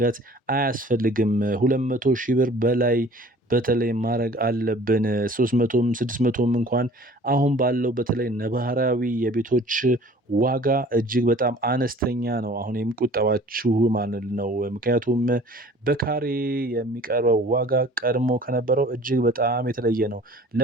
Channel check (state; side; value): normal; both; correlation 0.48